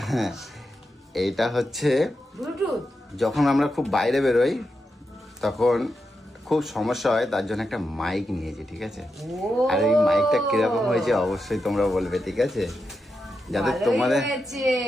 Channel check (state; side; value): normal; both; correlation 0.87